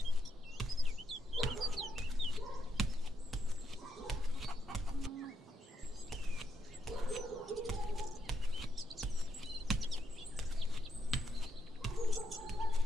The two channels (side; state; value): both; normal; correlation 0.80